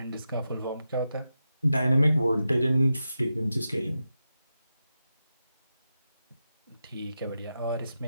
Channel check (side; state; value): both; inverted; correlation -0.90